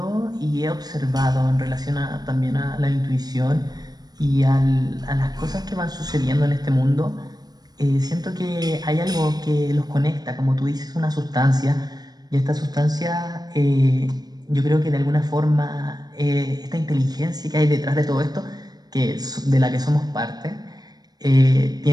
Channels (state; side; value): late; left; 0.19 ms